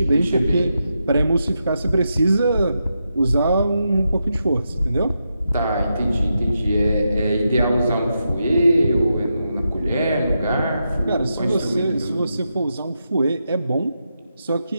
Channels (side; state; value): both; inverted; correlation -0.85